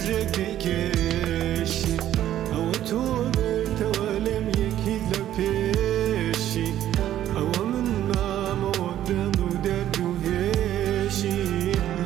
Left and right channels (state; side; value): quieter; left; 12.1 dB